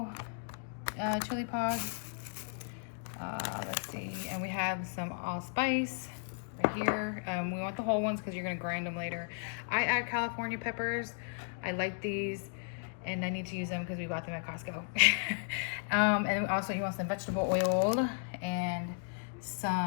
chili pods. Let's see, and we have some allspice right here. We want the whole ones because you're gonna grind them later. I add California peppers. I like these, and I need to use them because we bought them at Costco. And also you want some vegetable oil and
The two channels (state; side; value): silent; right; digital silence